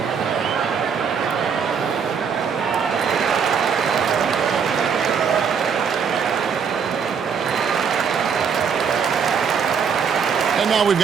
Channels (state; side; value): quieter; left; 6.6 dB